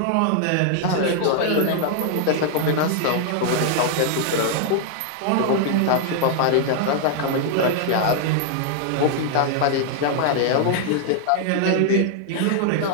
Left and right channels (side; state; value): both; different; correlation -0.01